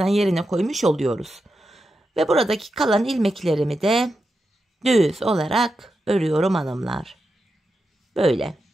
yerine koymuş oluyoruz. Ve buradaki kalan ilmeklerimi de düz olarak örüyorum hanımlar. Böyle.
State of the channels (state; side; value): normal; both; correlation 0.88